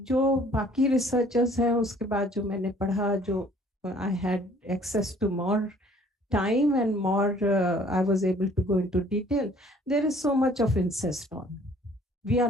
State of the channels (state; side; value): normal; both; correlation 0.56